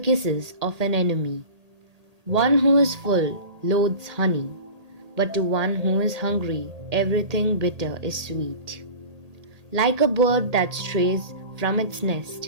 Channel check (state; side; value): late; left; 1.8 ms